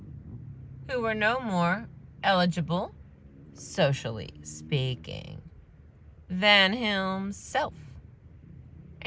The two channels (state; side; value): identical; both; correlation 1.00